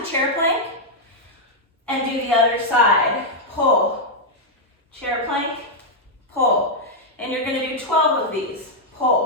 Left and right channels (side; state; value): both; normal; correlation -0.03